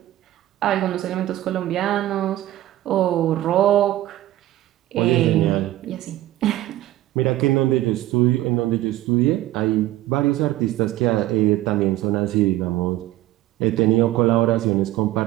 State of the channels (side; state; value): left; quieter; 15.1 dB